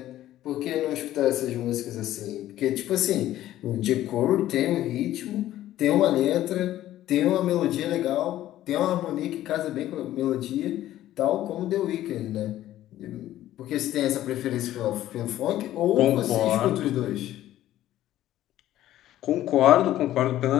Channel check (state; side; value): quieter; right; 13.6 dB